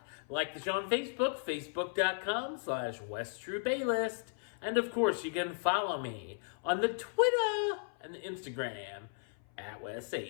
Like the show on Facebook, Facebook.com/WestTroopaList. And of course, you can follow me on the Twitter and the Instagram at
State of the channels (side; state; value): right; silent; 54 dB below the other